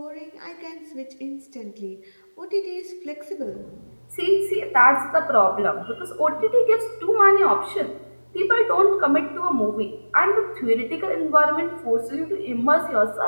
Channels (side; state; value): both; inverted; correlation -1.00